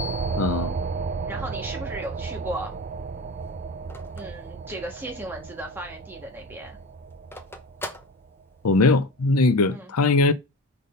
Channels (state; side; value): normal; both; correlation 0.29